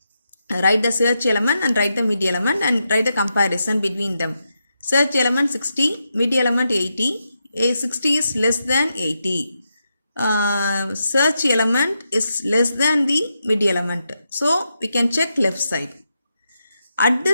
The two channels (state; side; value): inverted; both; correlation -0.85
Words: Write the search element and write the mid element and write the comparison between them. Search element 60, mid element 80. 60 is less than 80. Search element is less than the mid element. So we can check left side. At